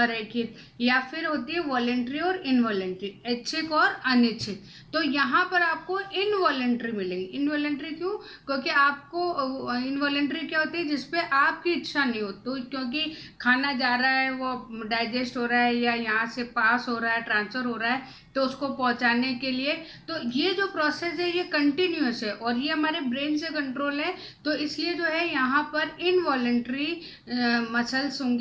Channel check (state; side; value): identical; both; correlation 1.00